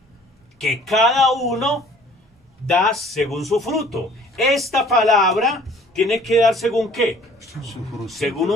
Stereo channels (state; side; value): normal; both; correlation 0.54